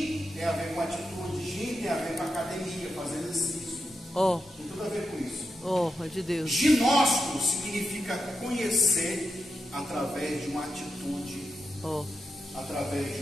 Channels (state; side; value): normal; both; correlation 0.87